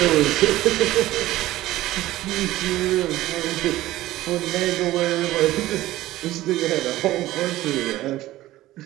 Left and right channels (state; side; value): quieter; left; 16.0 dB